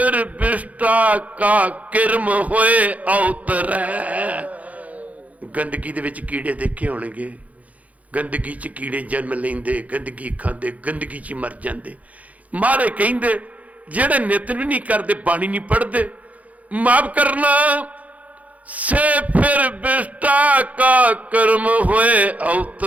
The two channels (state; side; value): late; left; 0.071 ms